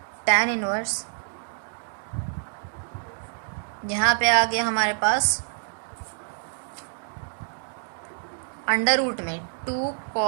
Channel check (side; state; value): left; silent; digital silence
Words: यहाँ पे आ गया हमारे पास अंडर रूट में 2